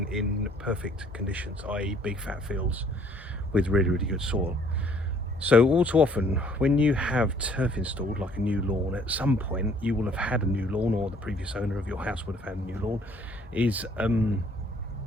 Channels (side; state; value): both; normal; correlation 0.60